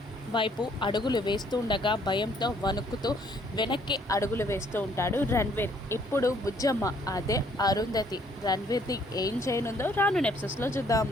వైపు అడుగులు వేస్తూ ఉండగా భయంతో వణుకుతూ వెనక్కి అడుగులు వేస్తూ ఉంటాడు రణ్వీర్. ఇప్పుడు బుజ్జమ్మ అదే అరుంధతి రణ్వీర్ని ఏం చేయనుందో రాను ఎపిసోడ్స్లో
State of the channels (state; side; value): normal; both; correlation 0.64